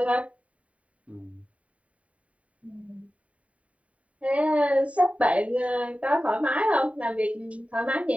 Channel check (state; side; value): late; left; 0.066 ms